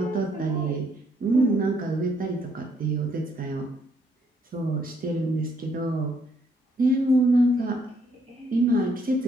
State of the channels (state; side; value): normal; both; correlation 0.70